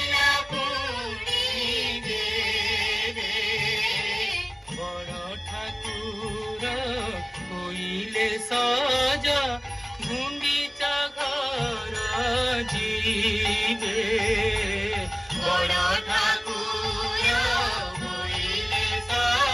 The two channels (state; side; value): identical; both; correlation 1.00